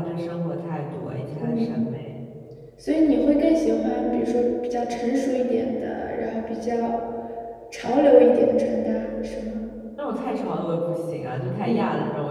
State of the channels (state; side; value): identical; both; correlation 1.00